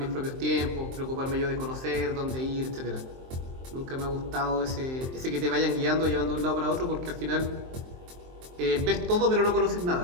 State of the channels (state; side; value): late; left; 23 ms